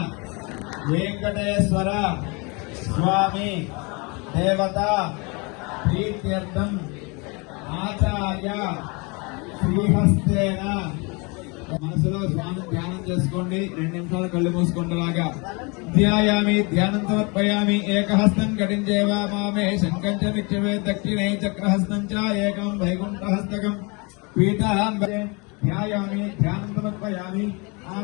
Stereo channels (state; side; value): quieter; right; 29.7 dB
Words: వెంకటేశ్వర స్వామి దేవత ప్రీత్యర్థం ఆచార్య శ్రీహస్తేన. మనసులో స్వామి ధ్యానం చేసుకోండి, 2 నిమిషాలు కళ్ళు మూసుకుంటలాగా. ధ్యాయామి ధ్యానం సమర్పయామి. ఏకహస్తం కటించేవా మామే శంఖం చ నిత్యమే దక్షిణే చక్రహస్తం చ ఏకం వైకుంఠహస్తకం పీఠాం ధ్యాయామి ధ్యానం సమర్పయామి.